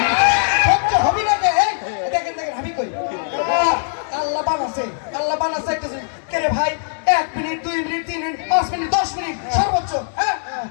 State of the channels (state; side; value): silent; right; digital silence